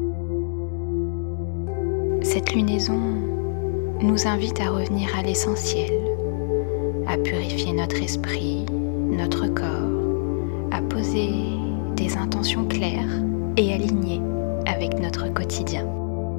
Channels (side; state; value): right; silent; digital silence